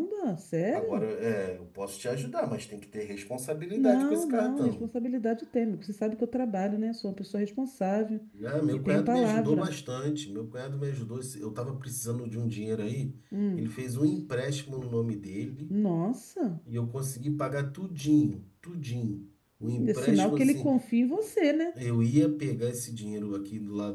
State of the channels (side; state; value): both; identical; correlation 1.00